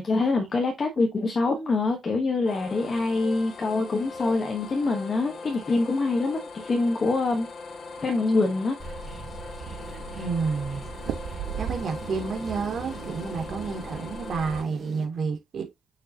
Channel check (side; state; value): both; normal; correlation 0.84